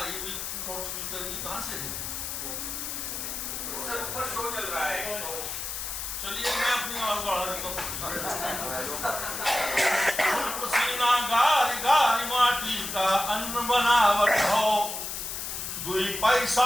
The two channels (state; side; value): noise; left; hiss, 5 dB below the sound